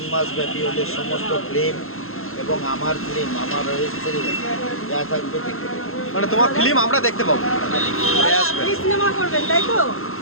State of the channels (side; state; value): right; late; 0.62 ms